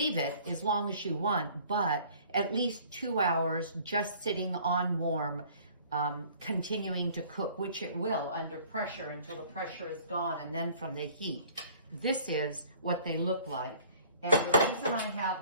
it as long as you want, but at least 2 hours just sitting on warm, continuing to cook, which it will under pressure until the pressure is gone, and then from the heat. This is what they look like. And the reason I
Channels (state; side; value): inverted; both; correlation -0.53